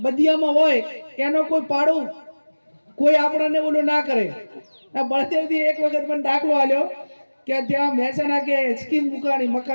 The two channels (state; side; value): inverted; both; correlation -1.00